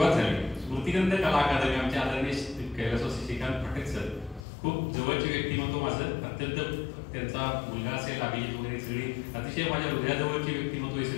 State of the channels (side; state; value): right; drops out; at 4.5 s